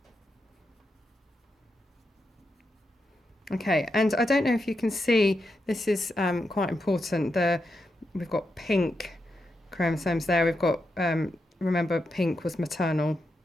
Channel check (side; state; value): both; normal; correlation 0.85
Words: Okay, and I don't know if you can see, this is quite important. We've got pink chromosomes there. We've got, remember, pink was maternal.